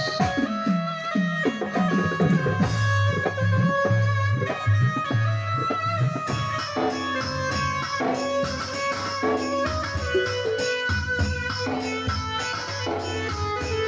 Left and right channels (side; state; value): both; identical; correlation 1.00